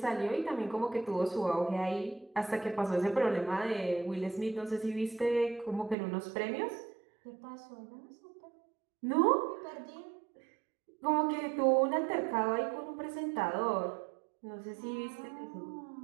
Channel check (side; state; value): left; drops out; at 6.0 s